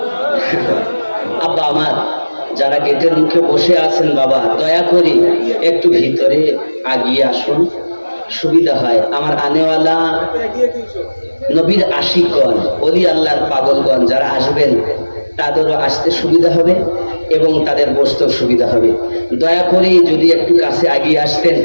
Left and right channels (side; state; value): both; inverted; correlation -1.00